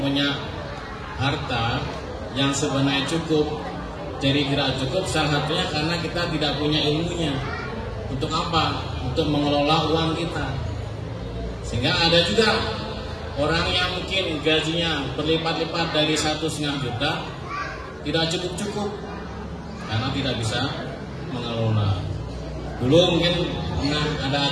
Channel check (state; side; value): identical; both; correlation 1.00